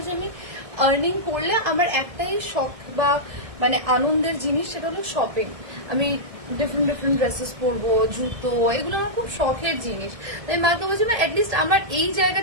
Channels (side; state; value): left; late; 1.6 ms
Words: যে আমি আর্নিং করলে আমার একটাই শখ বা মানে আনন্দের জিনিস, সেটা হলো শপিং। আমি ডিফারেন্ট ডিফারেন্ট ড্রেসেস পরবো, জুতো, এগুলো আমার খুব শখের জিনিস। তাই মাকে বলছি না, অ্যাটলিস্ট আমার এই